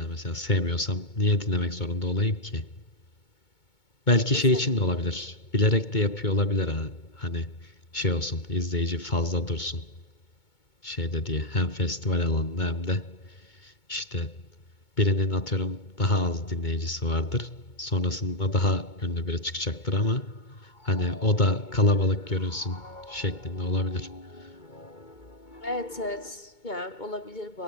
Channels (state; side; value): late; right; 2.2 ms